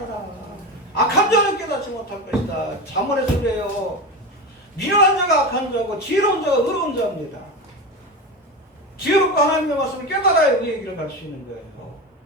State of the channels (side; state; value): both; normal; correlation 0.23